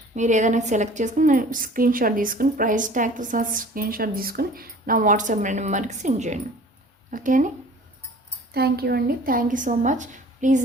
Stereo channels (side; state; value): both; normal; correlation 0.47